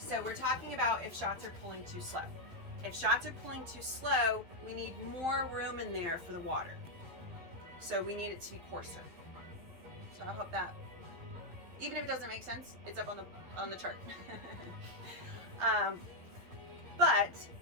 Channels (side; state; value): left; late; 12 ms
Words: we're talking about if shots are pulling too slow. If shots are pulling too slow, we need more room in there for the water. So we need it to be coarser. So I hope that, even if it doesn't make sense, it's up on the chart. But